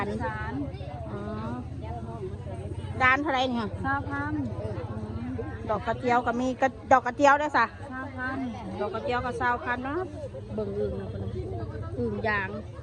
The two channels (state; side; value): identical; both; correlation 1.00